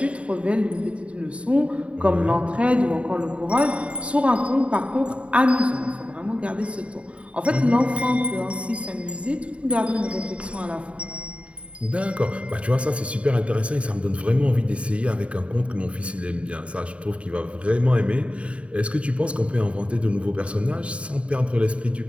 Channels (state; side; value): late; left; 0.063 ms